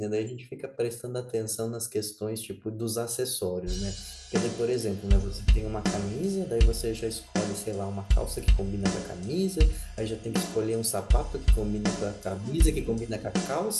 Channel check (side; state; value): both; identical; correlation 1.00